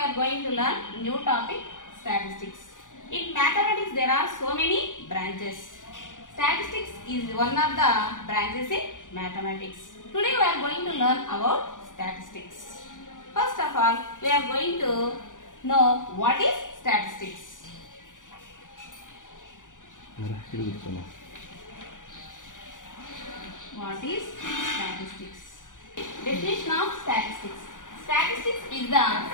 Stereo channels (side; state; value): right; late; 0.87 ms